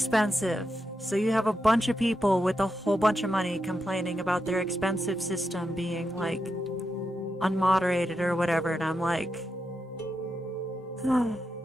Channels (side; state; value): both; normal; correlation 0.86